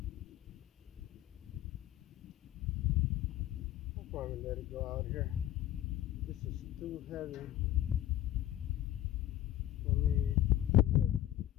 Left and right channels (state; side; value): quieter; right; 13.3 dB